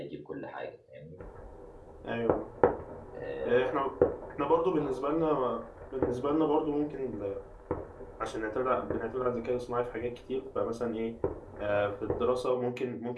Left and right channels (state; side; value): identical; both; correlation 1.00